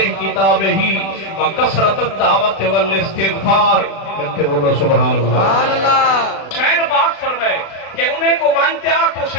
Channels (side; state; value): right; late; 36 ms